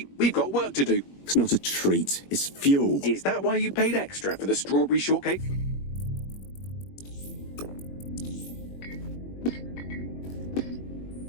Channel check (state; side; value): late; right; 21 ms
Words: We've got work to do. It's not a treat. It's fuel. Is that why you paid extra for the strawberry shortcake?